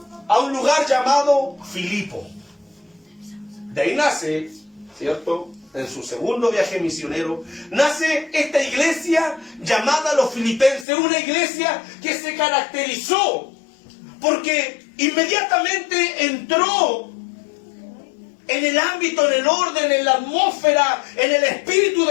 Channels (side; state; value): right; drops out; at 10.9 s